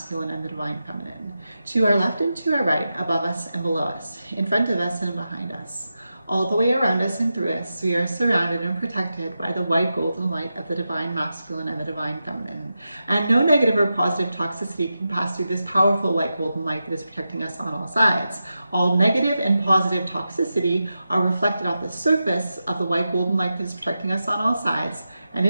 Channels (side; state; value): both; inverted; correlation -0.90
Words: and the divine feminine. To our left and to our right, above us and below us, in front of us and behind us. All the way around us and through us, we are surrounded and protected by the white golden light of the divine masculine and the divine feminine. And no negative or positive toxicity can pass through this powerful white golden light that is protecting us on all sides. All negative and positive toxicity are reflected off the surface of the white golden light that is protecting us on all sides and